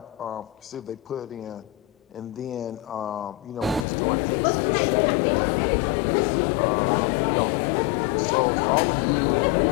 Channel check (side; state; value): right; drops out; at 3.9 s